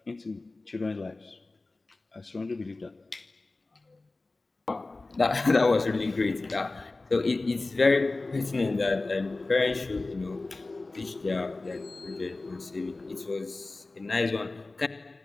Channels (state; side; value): quieter; right; 3.3 dB